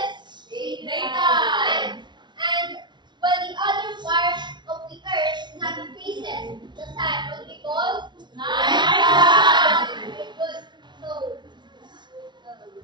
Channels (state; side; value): late; left; 0.22 ms